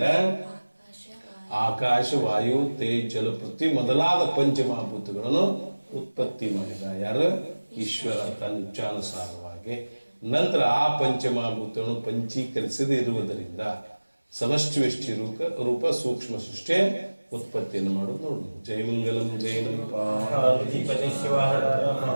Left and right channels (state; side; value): inverted; both; correlation -1.00